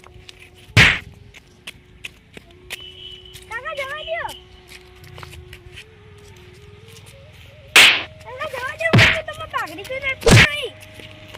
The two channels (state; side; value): identical; both; correlation 1.00